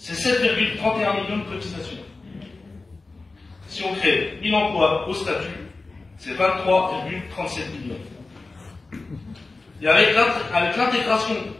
7,31 millions de cotisations. Si on crée 1000 emplois au statut, c'est 23,37 millions. Et avec l'intégration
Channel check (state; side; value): quieter; right; 3.6 dB